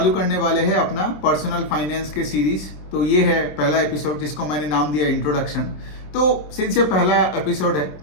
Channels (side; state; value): right; late; 27 ms